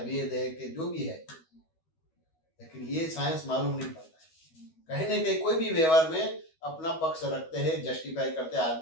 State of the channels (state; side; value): late; right; 12 ms